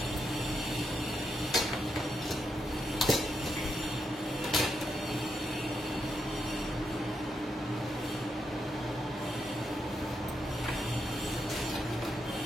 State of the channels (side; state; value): both; normal; correlation 0.82